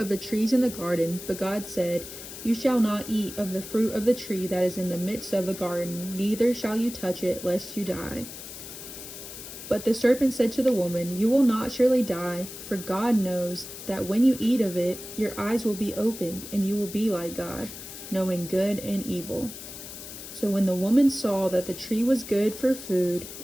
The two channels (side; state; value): left; noise; hiss, 12 dB below the sound